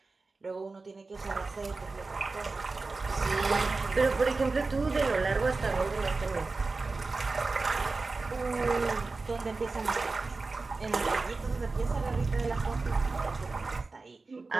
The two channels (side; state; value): left; quieter; 3.8 dB